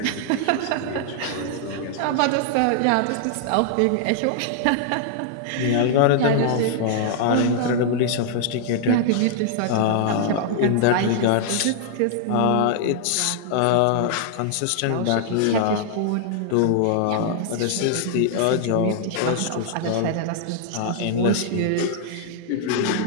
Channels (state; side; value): different; both; correlation 0.00